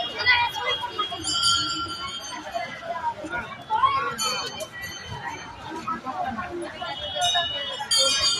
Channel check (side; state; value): both; identical; correlation 1.00